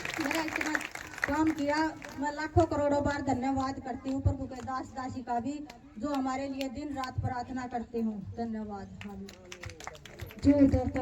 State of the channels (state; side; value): identical; both; correlation 1.00